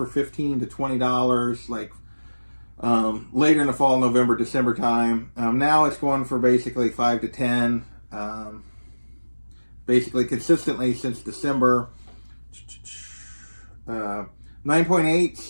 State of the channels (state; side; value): inverted; both; correlation -1.00